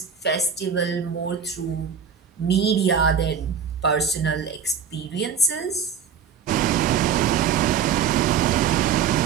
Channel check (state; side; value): quieter; left; 7.1 dB